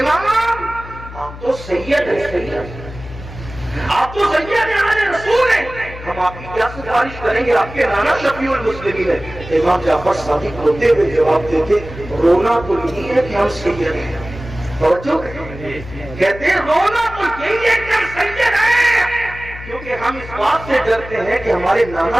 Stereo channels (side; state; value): left; noise; hum, 14 dB below the sound